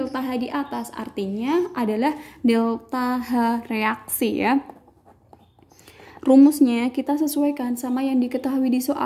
H di atas, artinya adalah delta H reaksi ya. Rumusnya kita sesuaikan sama yang diketahui di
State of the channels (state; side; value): identical; both; correlation 1.00